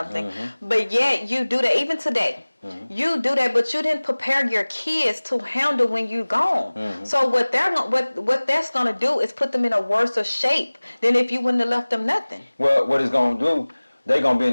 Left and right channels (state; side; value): inverted; both; correlation -1.00